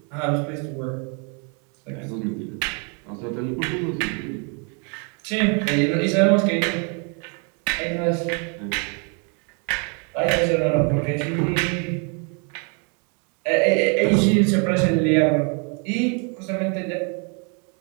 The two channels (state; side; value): quieter; left; 36.6 dB